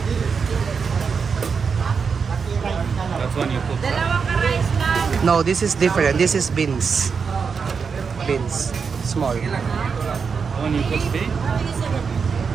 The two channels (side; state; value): left; quieter; 5.7 dB